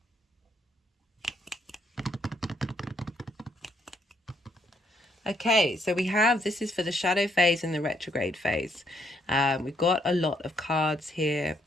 Okay, so we have, this is for the shadow phase and the retrograde phase. We've got a lot of cards here.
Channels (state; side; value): normal; both; correlation 0.72